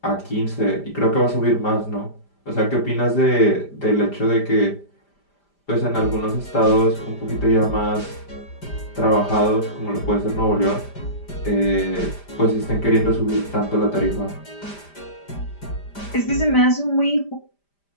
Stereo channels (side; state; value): right; late; 5.0 ms